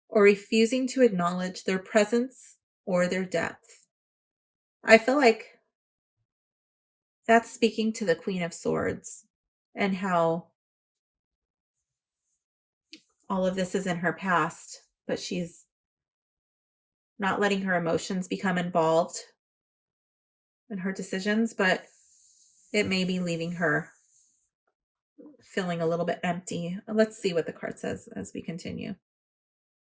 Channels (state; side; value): identical; both; correlation 1.00